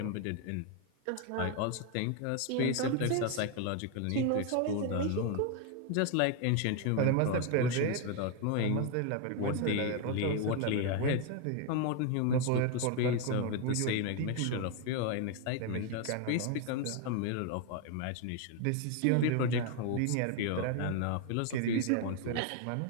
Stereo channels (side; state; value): both; different; correlation 0.01